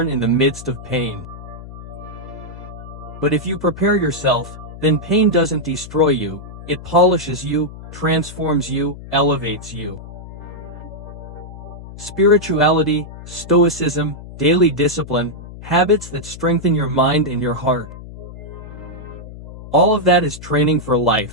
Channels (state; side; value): noise; left; hum, 14 dB below the sound